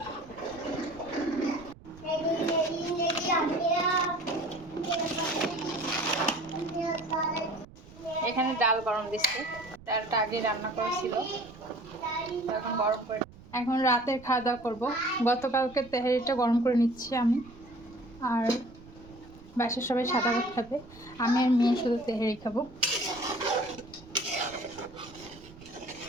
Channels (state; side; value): noise; right; rumble, 20 dB below the sound